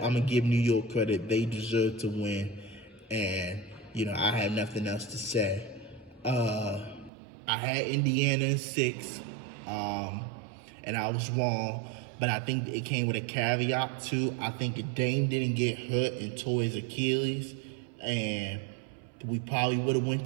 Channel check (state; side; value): drops out; left; at 7.1 s